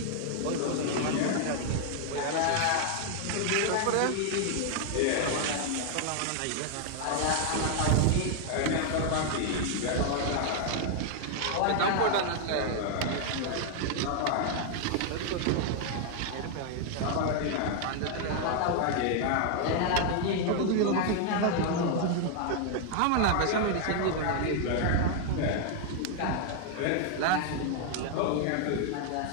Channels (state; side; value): different; both; correlation 0.00